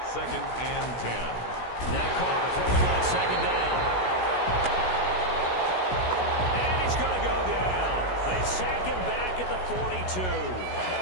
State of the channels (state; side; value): late; right; 16 ms